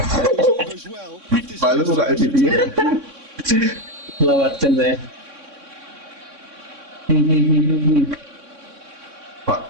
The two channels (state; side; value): late; left; 3.6 ms